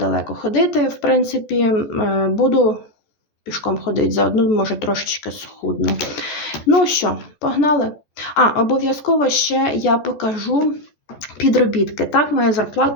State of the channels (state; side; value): late; right; 14 ms